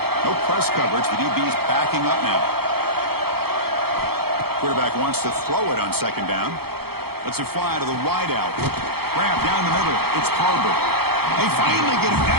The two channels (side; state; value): left; late; 0.96 ms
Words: No press coverage. The DB's backing up now. Quarterback wants to throw it on second down. Lets it fly to the wideout. Grab down the middle. It's Harbor. They finally get him